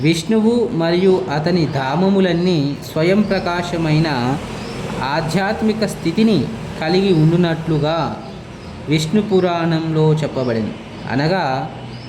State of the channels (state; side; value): identical; both; correlation 1.00